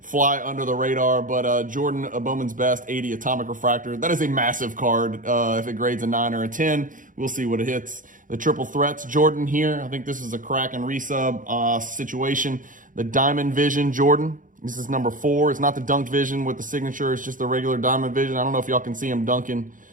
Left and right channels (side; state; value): left; late; 0.38 ms